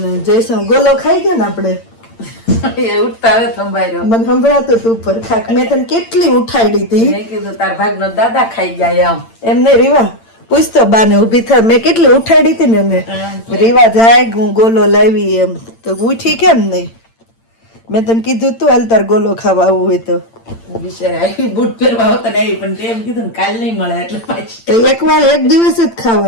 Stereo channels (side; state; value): right; late; 8.8 ms